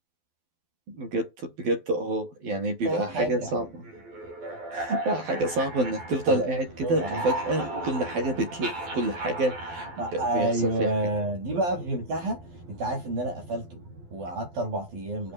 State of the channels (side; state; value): left; late; 12 ms